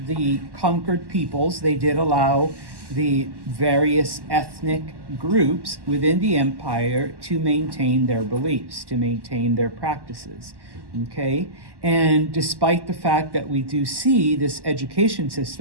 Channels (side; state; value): left; late; 1.1 ms